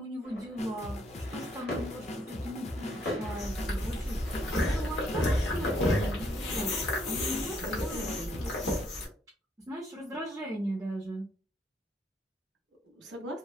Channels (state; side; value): normal; both; correlation 0.70